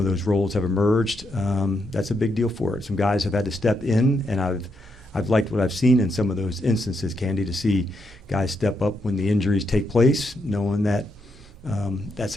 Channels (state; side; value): normal; both; correlation 0.80